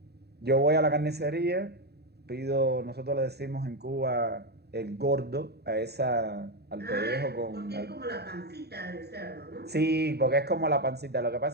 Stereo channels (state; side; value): late; left; 0.48 ms